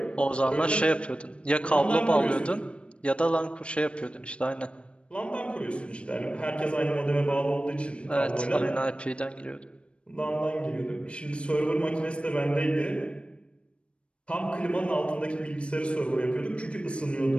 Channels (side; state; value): right; late; 0.059 ms